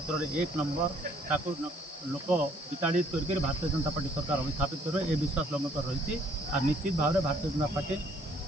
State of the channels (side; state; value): both; normal; correlation 0.62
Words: में 1 नंबर ताकू लोक विताड़ित करके भारतीय जनता पार्टी सरकार अभिस्थापित कर ए विश्वास लोक रही। और निश्चित भाव में भारतीय जनता पार्टी